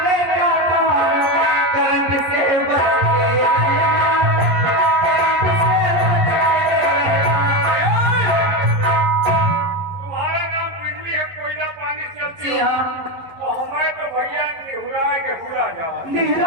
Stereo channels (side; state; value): left; late; 11 ms